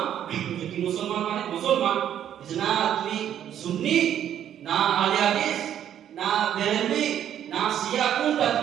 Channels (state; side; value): quieter; left; 10.2 dB